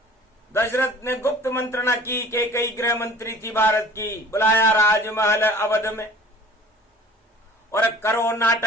दशरथ ने गुप्त मंत्रणा की के कई गृह मंत्री थी भारत की, बुलाया राजमहल अवध में और करो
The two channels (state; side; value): normal; both; correlation 0.47